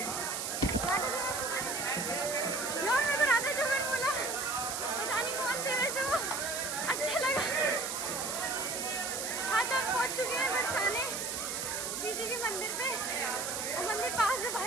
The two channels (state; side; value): noise; right; hiss, 3 dB below the sound